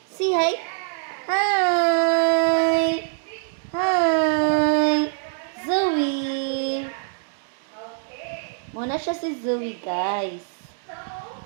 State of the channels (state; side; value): silent; left; digital silence